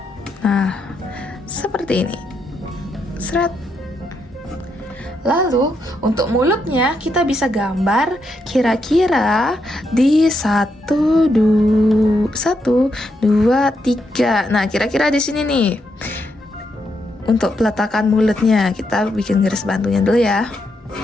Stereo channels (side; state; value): both; normal; correlation 0.80